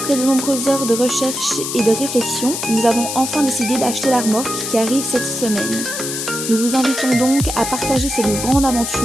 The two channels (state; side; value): noise; left; hiss, 5 dB below the sound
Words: de nombreuses heures de recherche et de réflexion, nous avons enfin décidé d'acheter la remorque qui arrive cette semaine. Nous vous invitons donc à partager cette grande